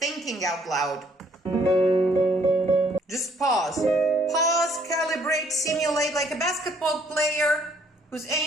out loud. Just pause. Pause, calibrate, simulate like a basketball player who's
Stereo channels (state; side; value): normal; both; correlation 0.64